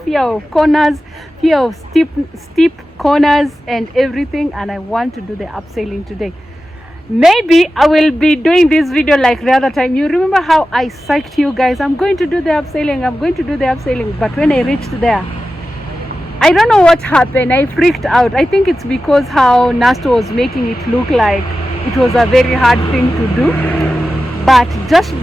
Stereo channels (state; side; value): normal; both; correlation 0.93